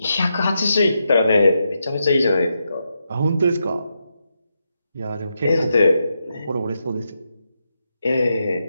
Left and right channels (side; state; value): both; inverted; correlation -0.85